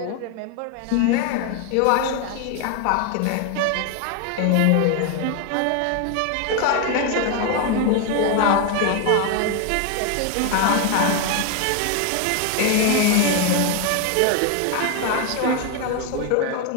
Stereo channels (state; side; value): different; both; correlation 0.01